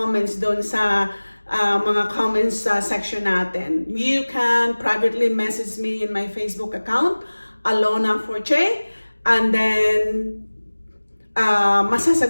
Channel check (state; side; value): inverted; both; correlation -1.00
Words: doon sa mga comments section natin, you can privately message me in my Facebook account, Alona Forche, and then